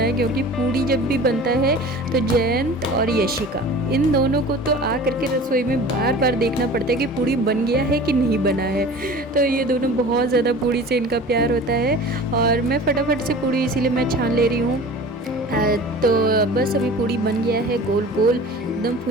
क्योंकि पूड़ी जब भी बनता है तो जयंत और यशिका, इन दोनों को तो आ करके रसोई में बार बार देखना पड़ता है कि पूड़ी बन गया है कि नहीं बना है। तो ये दोनों बहुत ज़्यादा पूड़ी से इनका प्यार होता है और मैं फटाफट से पूड़ी इसीलिए मैं छान ले रही हूँ। तो बस अभी पूड़ी बन गया है, गोल गोल एकदम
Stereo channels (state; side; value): normal; both; correlation 0.40